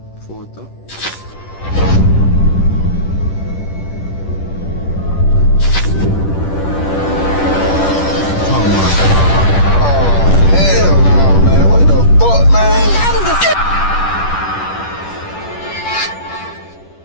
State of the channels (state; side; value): late; right; 10 ms